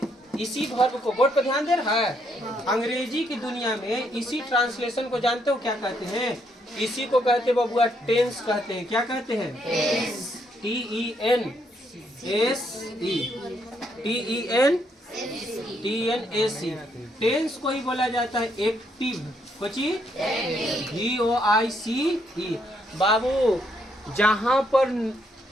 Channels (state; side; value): normal; both; correlation 0.74